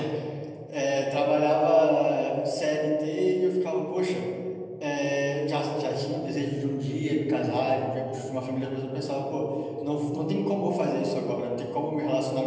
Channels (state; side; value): identical; both; correlation 1.00